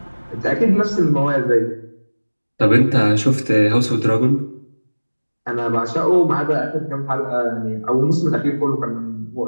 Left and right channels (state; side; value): inverted; both; correlation -1.00